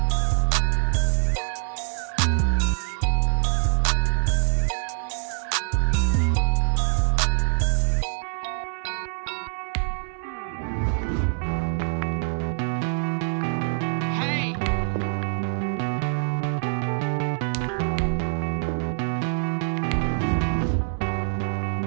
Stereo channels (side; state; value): left; silent; 62 dB below the other